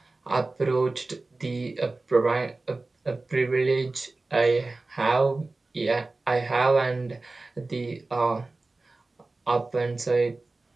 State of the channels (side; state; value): left; quieter; 3.3 dB